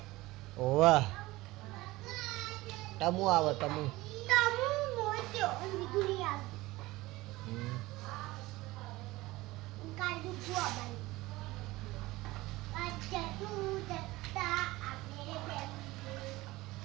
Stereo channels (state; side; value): quieter; left; 19.5 dB